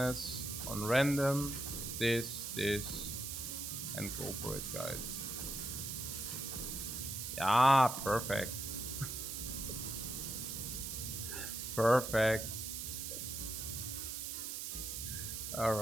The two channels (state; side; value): noise; right; hiss, 5 dB below the sound